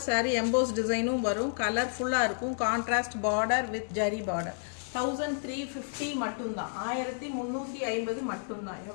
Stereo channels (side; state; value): right; silent; digital silence